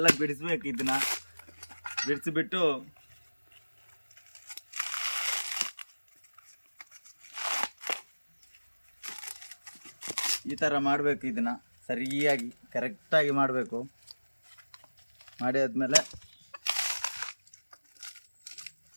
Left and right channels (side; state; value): both; inverted; correlation -1.00